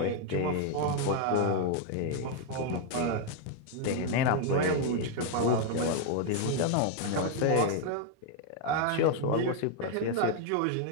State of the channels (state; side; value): different; both; correlation 0.00